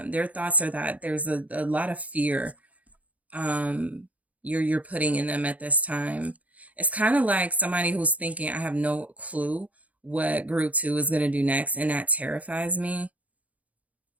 Their thoughts are that there's a lot of fear you're putting in them at this time. It's kind of like somebody who's thinking, I have no clue what group 2 is going to do next, and that terrifies me.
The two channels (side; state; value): left; late; 0.070 ms